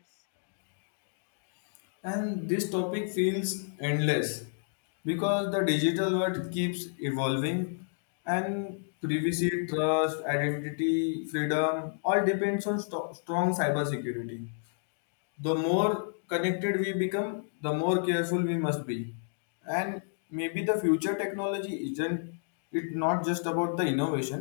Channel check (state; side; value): silent; right; digital silence